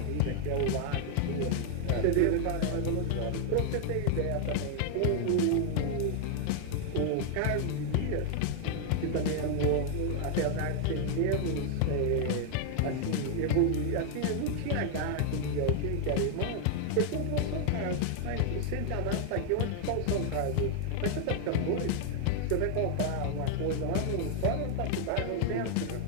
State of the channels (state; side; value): different; both; correlation 0.00